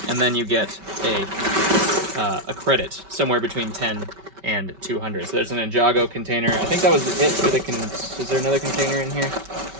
and then you get a credit somewhere between 10 and 200. So there's an Ninjago container. I think that was it for the is there another container in here?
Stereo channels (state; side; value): late; left; 5.2 ms